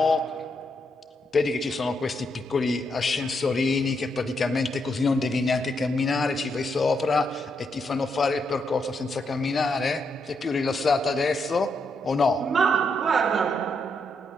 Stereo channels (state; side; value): normal; both; correlation 0.79